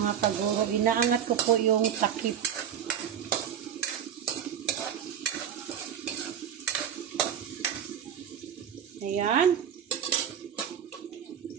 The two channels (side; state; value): left; quieter; 9.0 dB